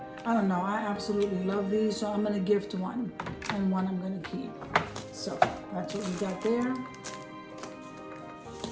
I don't know, I absolutely love these. So I'm gonna gift one, and one I'm gonna keep. So that's what we got there.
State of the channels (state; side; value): identical; both; correlation 1.00